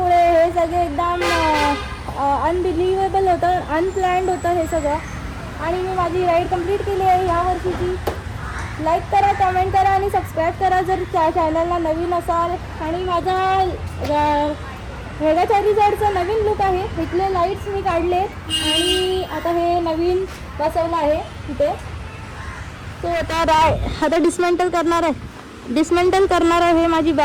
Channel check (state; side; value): identical; both; correlation 1.00